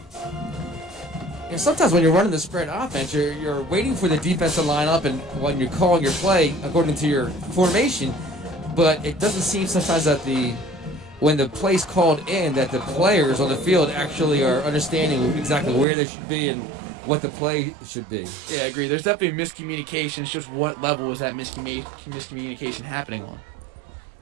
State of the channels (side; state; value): left; drops out; at 15.9 s